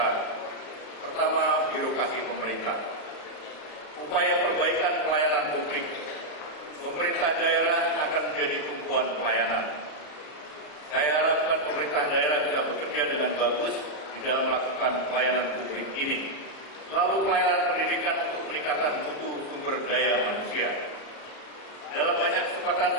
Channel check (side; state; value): right; late; 34 ms